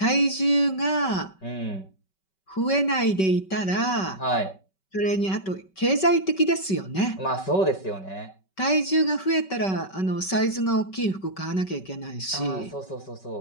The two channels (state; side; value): late; right; 5.2 ms